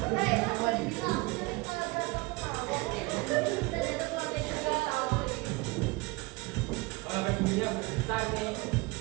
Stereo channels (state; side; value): quieter; left; 24.4 dB